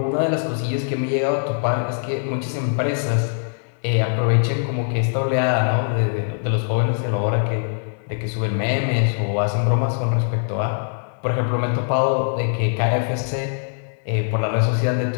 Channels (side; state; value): right; silent; 64 dB below the other